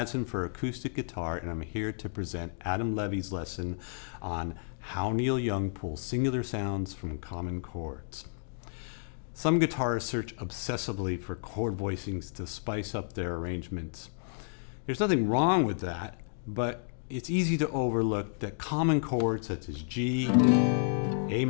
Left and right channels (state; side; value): silent; right; digital silence